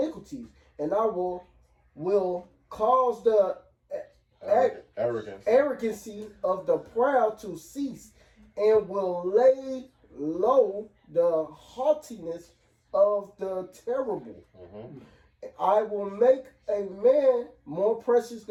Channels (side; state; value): both; identical; correlation 1.00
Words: and I will cause the arrogancy of the proud to cease, and will lay low the haughtiness of the terrible. Mm-hmm. I will make a man more precious